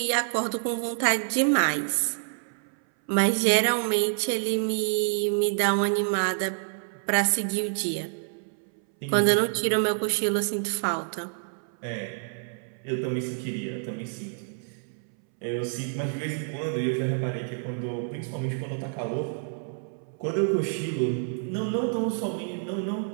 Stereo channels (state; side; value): silent; left; 60 dB below the other